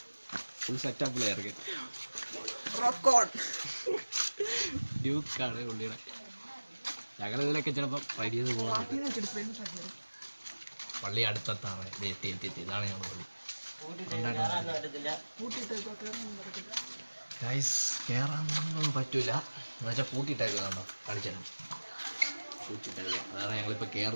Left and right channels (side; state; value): both; inverted; correlation -1.00